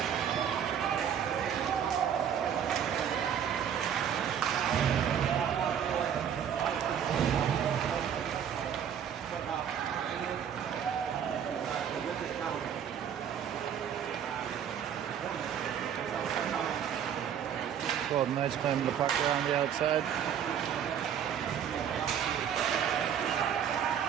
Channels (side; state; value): left; quieter; 8.7 dB